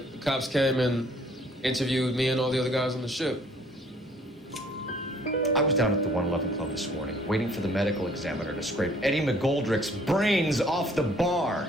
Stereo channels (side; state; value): both; normal; correlation 0.58